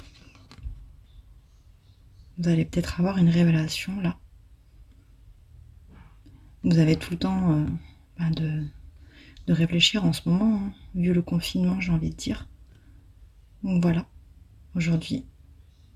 Vous allez peut-être avoir une révélation là. Vous avez tout le temps de réfléchir en ce moment, hein, vu le confinement, j'ai envie de dire. Donc voilà, aujourd'hui,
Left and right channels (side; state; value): both; identical; correlation 1.00